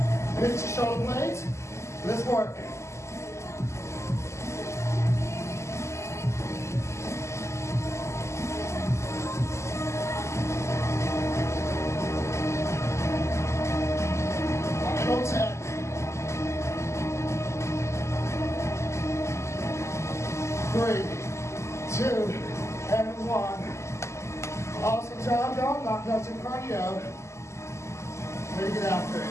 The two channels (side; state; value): right; late; 0.13 ms